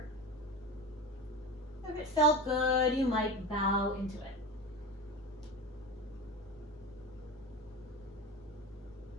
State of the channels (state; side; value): normal; both; correlation 0.28